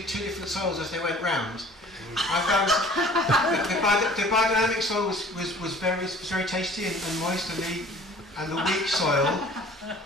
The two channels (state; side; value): normal; both; correlation 0.49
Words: different soils as they went round. I found the biodynamic soil was very tasty and moist, and the weak soil